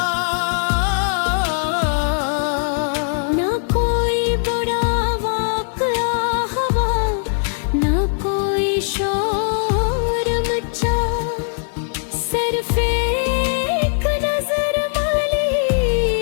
ना कोई बुरा वाक़या हुआ, ना कोई शोर मचा, सिर्फ एक नजर वाली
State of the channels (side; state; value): right; silent; 66 dB below the other